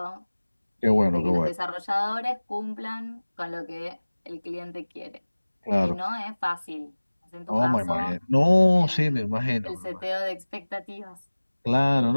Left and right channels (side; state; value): both; inverted; correlation -1.00